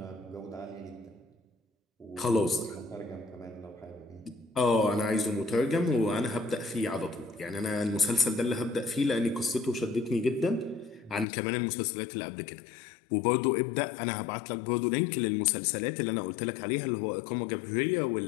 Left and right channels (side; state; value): right; drops out; at 11.2 s